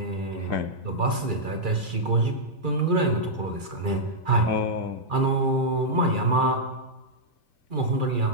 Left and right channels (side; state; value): left; late; 2.3 ms